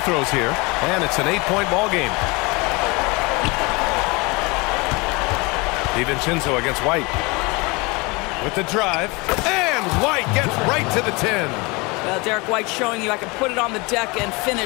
here. And it's an 8-point ball game. DiVincenzo against White. With the drive. And White gets right to the 10. Well, Derek White showing you I can put it on the deck and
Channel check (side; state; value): right; quieter; 26.5 dB